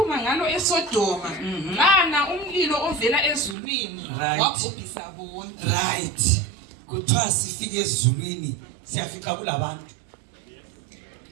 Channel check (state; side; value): drops out; left; at 3.6 s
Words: ngalo eSodoma bana umlilo ovela ezulwini wabhubhisa bonke right kuthiwa sifike ezulwini siyafika kulabantu